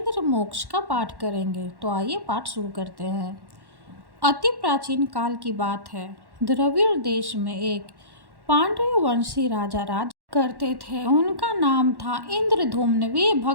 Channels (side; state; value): left; late; 1.1 ms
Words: मोक्ष का पाठ करेंगे। तो आइए पाठ शुरू करते हैं। अति प्राचीन काल की बात है। द्रविड़ देश में एक पांड्य वंशी राजा राज करते थे। उनका नाम था इंद्रधूम्न। वे